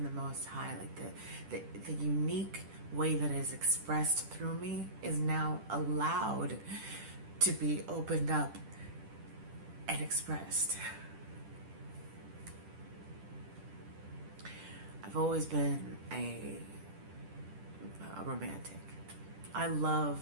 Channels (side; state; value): left; late; 10 ms